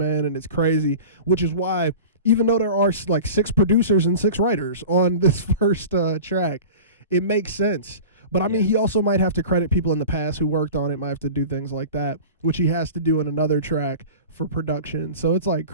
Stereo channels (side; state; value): both; inverted; correlation -0.37